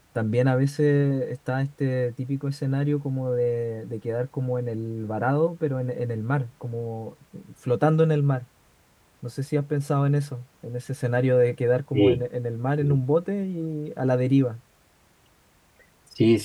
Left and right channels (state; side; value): identical; both; correlation 1.00